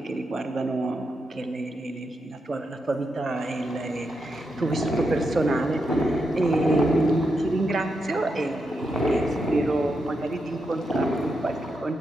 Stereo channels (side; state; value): both; normal; correlation 0.84